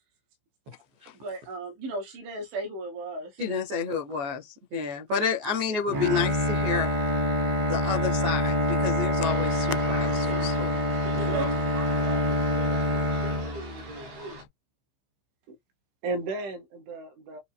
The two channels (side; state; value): left; late; 14 ms